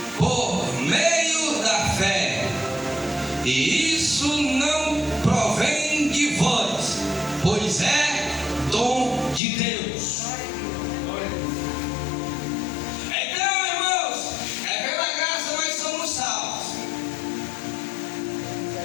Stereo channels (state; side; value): drops out; right; at 9.4 s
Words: por meio da fé. E isso não provém de vós, pois é dom de Deus. Então, irmãos, é pela graça nós somos salvos.